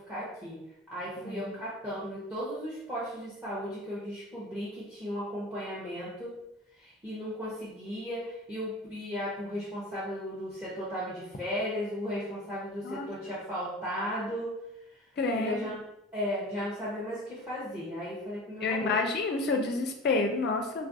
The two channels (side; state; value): both; normal; correlation 0.36